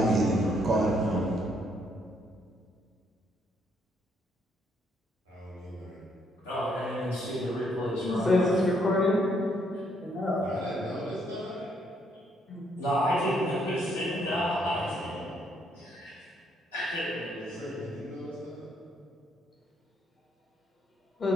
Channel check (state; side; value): normal; both; correlation 0.72